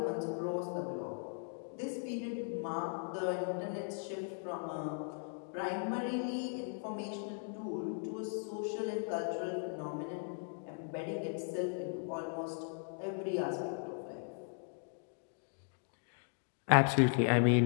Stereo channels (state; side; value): silent; right; 53 dB below the other